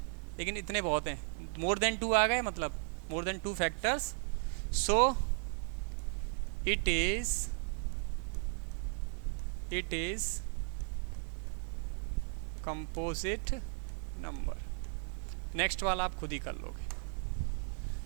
लेकिन इतने बहुत हैं, मोर देन टू आ गए, मतलब more than two factors, so it is composite number. Next वाला आप खुद ही कर लोगे,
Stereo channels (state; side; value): silent; left; 54 dB below the other